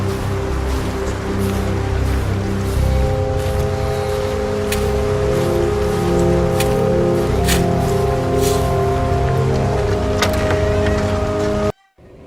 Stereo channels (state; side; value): identical; both; correlation 1.00